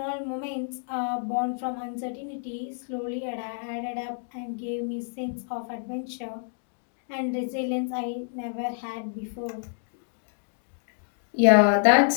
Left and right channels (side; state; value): right; silent; digital silence